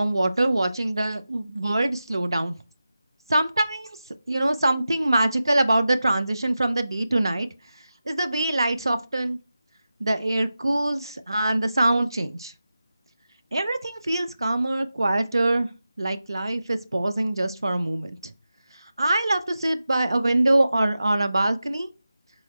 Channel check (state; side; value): inverted; both; correlation -0.93